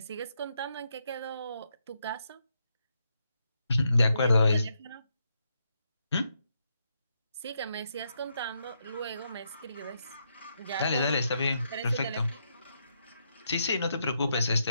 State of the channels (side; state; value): both; inverted; correlation -0.80